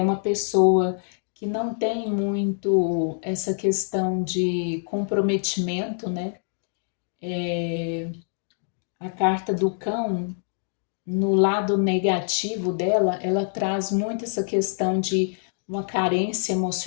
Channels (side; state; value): right; silent; digital silence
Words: uma pessoa que não tem muito essa questão de comprometimento, né? A carta do cão, no lado negativo dela, ela traz muito essa questão de uma carência